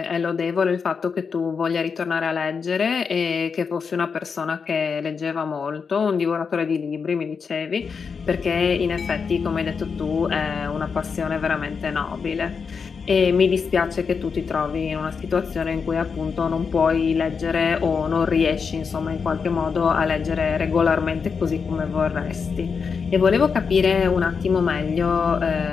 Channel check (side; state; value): right; quieter; 5.7 dB